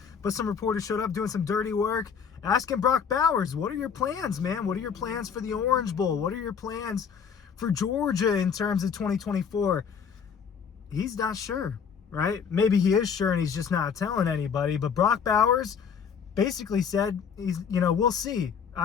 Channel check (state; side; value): quieter; right; 6.9 dB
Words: but some reporters showed up doing some dirty work, asking Brock Bowers, what are your plans, man? What are your plans for the Orange Bowl? What are your plans for Georgia in terms of 2024? He's not sure, right? Maybe he is sure and he's just not telling anybody, but Brock Bowers basically said, we'll see.